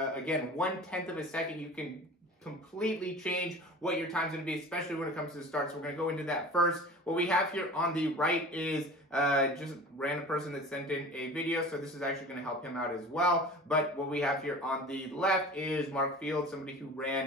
1/10 of a second, you can completely change what your time's going to be, especially when it comes to the start. So we're going to go into that first. What we have here on the right is just a random person that sent in a video, so this is actually going to help him out as well. But what we have here on the left is Mark Fields, somebody who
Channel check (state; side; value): normal; both; correlation 0.39